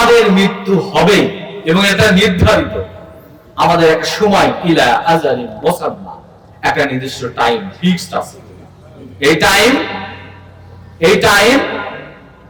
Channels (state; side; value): identical; both; correlation 1.00